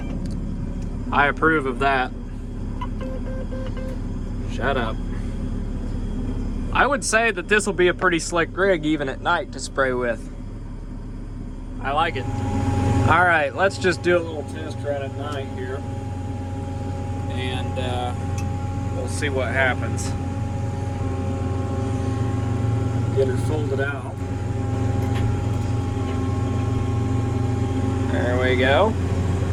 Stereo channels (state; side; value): identical; both; correlation 1.00